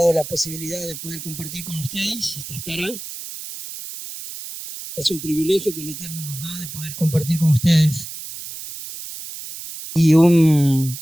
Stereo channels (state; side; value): noise; right; hiss, 10 dB below the sound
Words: la posibilidad de poder compartir con ustedes esta Haftará. Es un privilegio que el Eterno nos da de poder compartir con ustedes. Y un